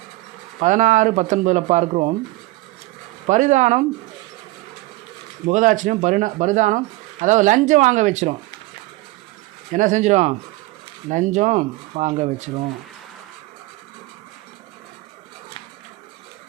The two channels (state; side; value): quieter; left; 19.9 dB